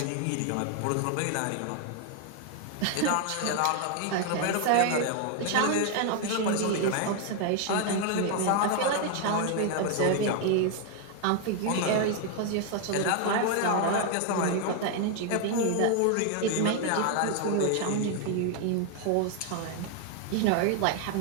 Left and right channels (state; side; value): different; both; correlation 0.00